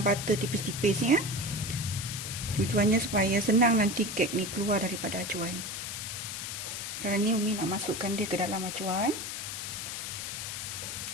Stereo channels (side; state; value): left; noise; hiss, 5 dB below the sound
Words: butter tipis-tipis Tujuannya supaya senang nanti kek ni keluar daripada acuan. Sekarang ni Umi nak masukkan dia ke dalam acuan.